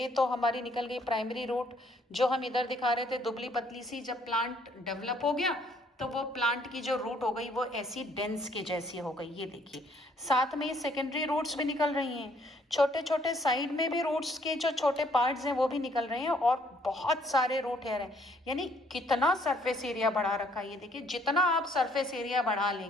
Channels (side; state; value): both; normal; correlation 0.64